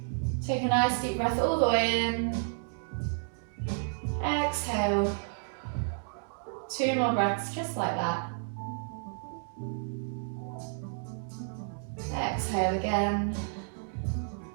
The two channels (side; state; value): left; silent; 57 dB below the other